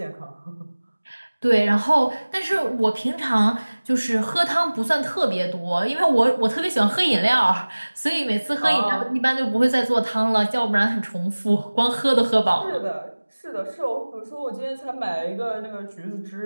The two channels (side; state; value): both; inverted; correlation -1.00